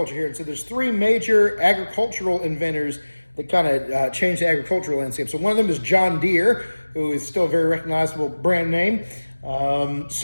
here. And so there's three major agricultural inventors that kind of changed the agricultural landscape. So one of them is John Deere, who is still a very recognizable brand name.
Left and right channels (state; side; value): inverted; both; correlation -1.00